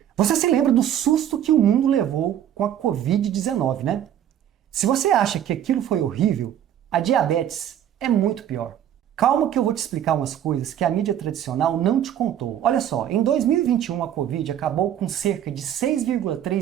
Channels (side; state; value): left; quieter; 10.5 dB